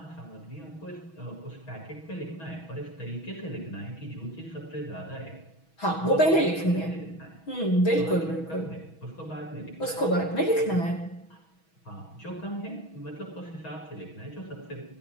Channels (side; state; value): right; late; 6.2 ms